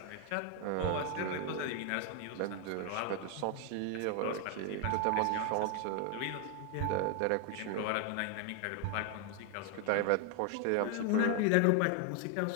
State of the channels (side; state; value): both; different; correlation 0.01